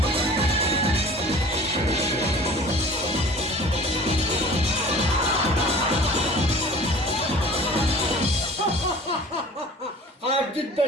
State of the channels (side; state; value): both; normal; correlation 0.45